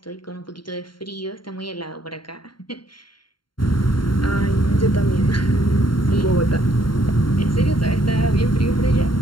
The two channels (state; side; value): late; right; 0.72 ms